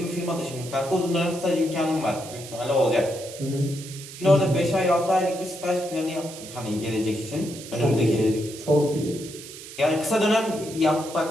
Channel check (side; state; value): right; noise; hiss, 14 dB below the sound